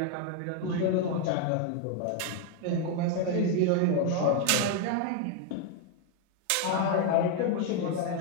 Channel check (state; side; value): different; both; correlation 0.01